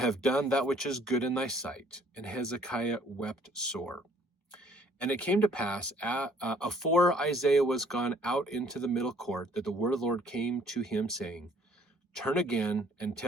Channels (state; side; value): normal; both; correlation 0.60